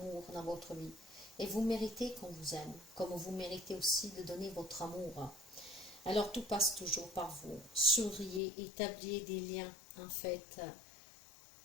dans votre vie. Et vous méritez qu'on vous aime, comme vous méritez aussi de donner votre amour. Alors tout passe toujours par vous. Souriez, établissez des liens en fait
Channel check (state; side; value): drops out; right; at 8.4 s